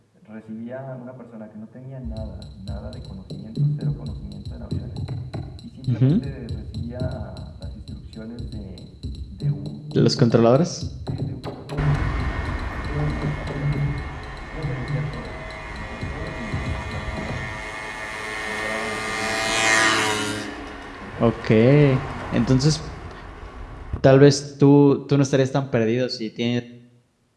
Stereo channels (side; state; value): both; identical; correlation 1.00